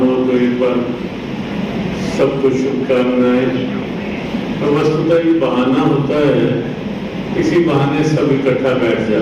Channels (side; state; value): both; identical; correlation 1.00